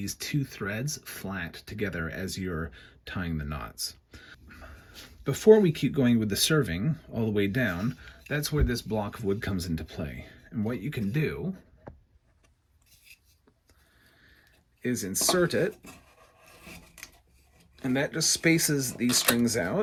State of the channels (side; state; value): both; identical; correlation 1.00